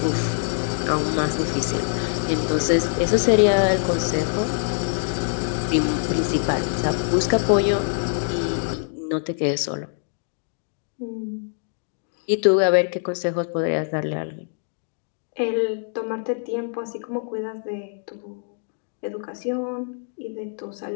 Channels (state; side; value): silent; right; digital silence